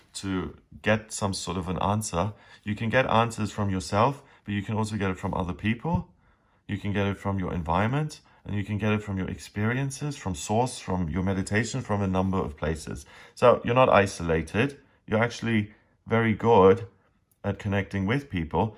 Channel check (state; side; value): identical; both; correlation 1.00